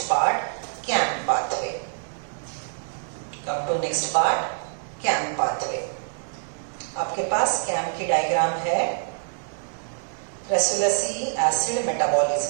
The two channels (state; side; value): silent; left; digital silence